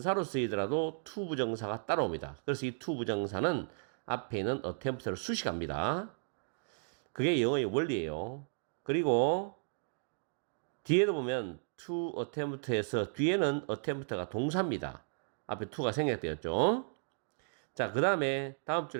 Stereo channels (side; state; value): left; silent; digital silence